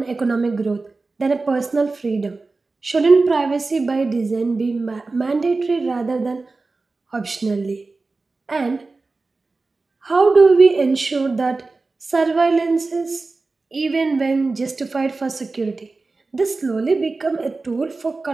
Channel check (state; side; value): quieter; left; 3.7 dB